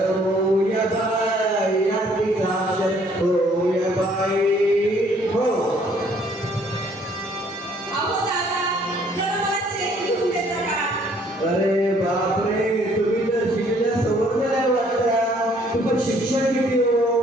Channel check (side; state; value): both; normal; correlation 0.62